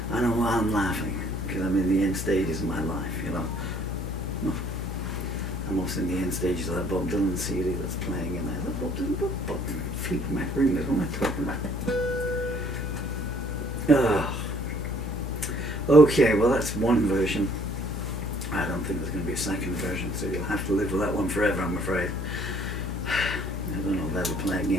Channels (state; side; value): noise; left; hum, 4 dB below the sound